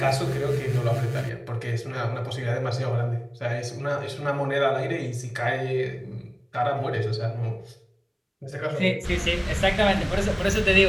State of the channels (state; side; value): identical; both; correlation 1.00